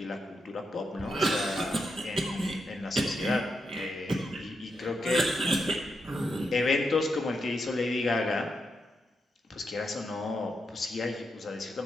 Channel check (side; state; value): both; normal; correlation 0.84